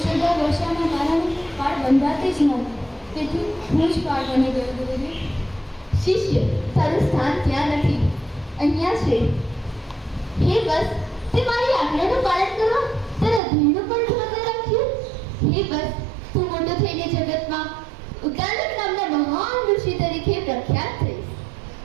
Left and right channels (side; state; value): left; drops out; at 13.4 s